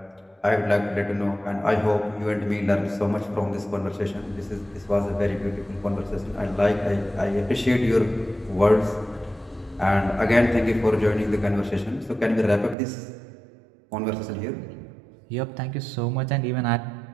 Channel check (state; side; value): drops out; left; at 12.8 s